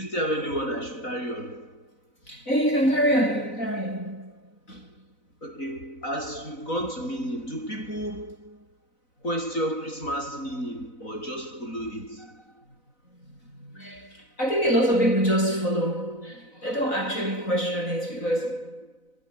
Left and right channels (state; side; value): late; right; 4.0 ms